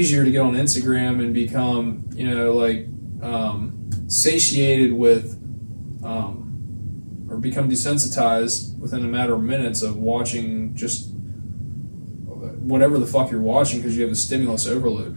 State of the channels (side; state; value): both; inverted; correlation -1.00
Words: to get on Instagram and become satiated with. Or become desensitized within a matter of minutes of watching just whatever the fuck you're watching because you have a stimulus overload.